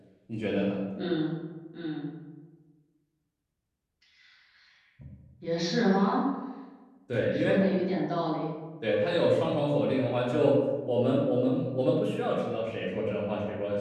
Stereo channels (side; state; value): both; identical; correlation 1.00